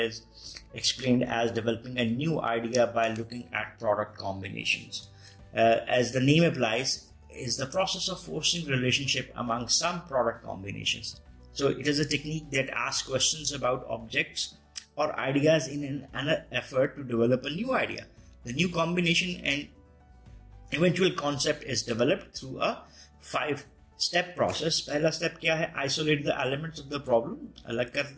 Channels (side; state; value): both; identical; correlation 1.00